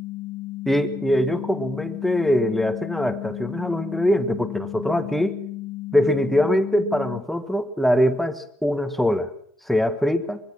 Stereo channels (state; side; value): normal; both; correlation 0.83